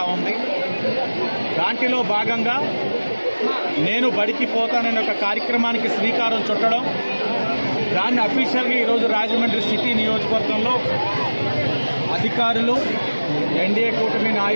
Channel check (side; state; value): both; inverted; correlation -1.00